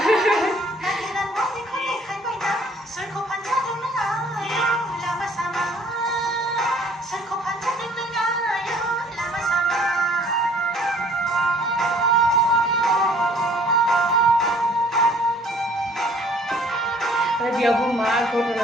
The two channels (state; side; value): normal; both; correlation 0.57